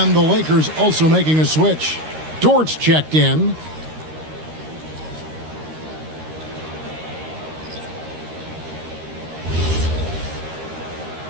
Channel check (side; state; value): left; late; 13 ms